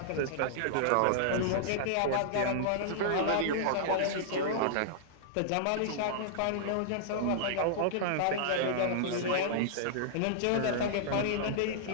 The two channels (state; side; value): different; both; correlation -0.02